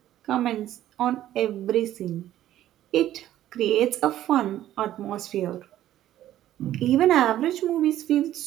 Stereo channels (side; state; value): left; quieter; 12.9 dB